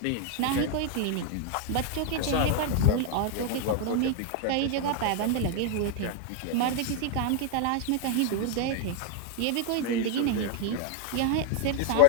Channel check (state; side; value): different; both; correlation 0.01